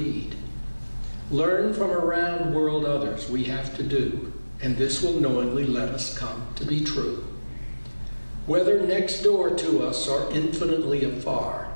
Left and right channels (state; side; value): inverted; both; correlation -1.00